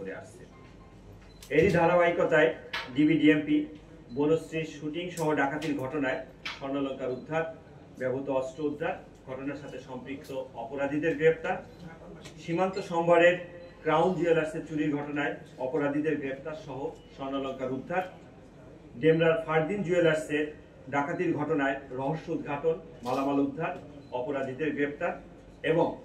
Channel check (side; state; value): both; identical; correlation 1.00